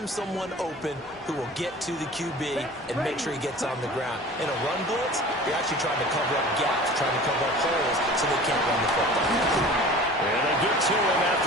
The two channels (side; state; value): both; normal; correlation 0.41